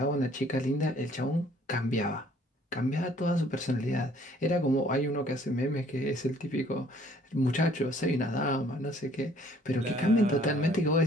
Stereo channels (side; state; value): both; normal; correlation 0.59